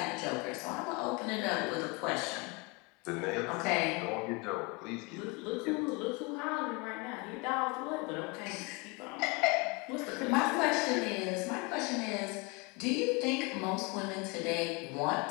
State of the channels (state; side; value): quieter; right; 28.4 dB